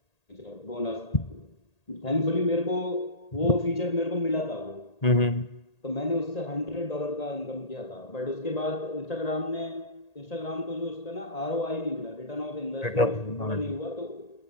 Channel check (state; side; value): late; right; 1.8 ms